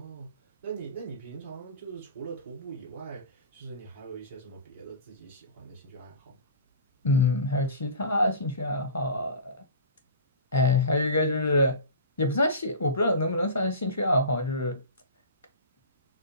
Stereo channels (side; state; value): both; inverted; correlation -0.36